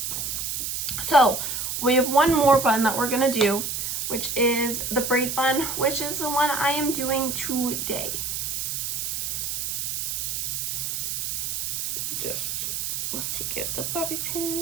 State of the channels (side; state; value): right; noise; hiss, 2 dB below the sound